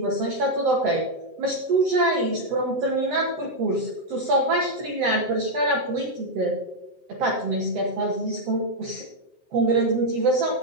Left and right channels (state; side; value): late; left; 7.7 ms